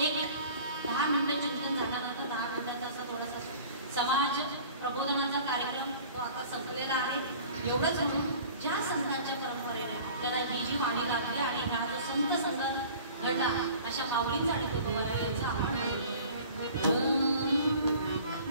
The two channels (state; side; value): inverted; both; correlation -0.45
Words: एक 10 मिनिटं चिंतन झाल्यानंतर 10 मिनिटाचा असा थोडासा समाज प्रबोधनाचा कार्यक्रम तो आता संपलेला आहे. एवढंच म्हणून ज्या संतांच्या परंपरेने आपल्याला ही जी वाणी लागली आणि ह्या जो संत संगत घडला अशा माऊलींचा आणि तुकोबारायांचा आभार मानतो.